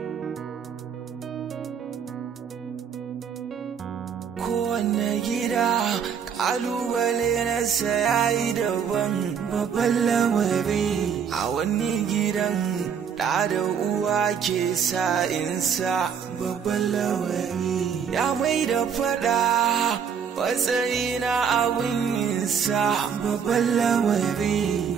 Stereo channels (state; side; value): quieter; left; 7.3 dB